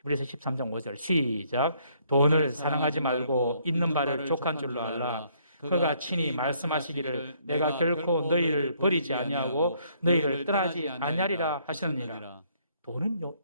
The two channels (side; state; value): both; inverted; correlation -0.67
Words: 13장 5절 시작. 돈을 사랑하지 말고 있는 바를 족한 줄로 알라. 그가 친히 말씀하시기를 내가 결코 너희를 버리지 아니하고 너희를 떠나지 아니하리라 하시느니라. 돈은요,